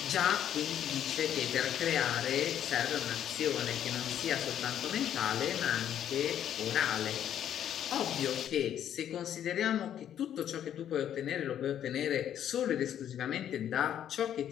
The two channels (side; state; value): right; quieter; 10.2 dB